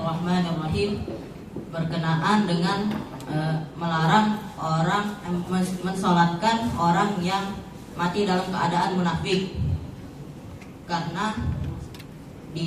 Berkenaan dengan melarang orang mensolatkan orang yang mati dalam keadaan munafik, karena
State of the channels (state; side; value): identical; both; correlation 1.00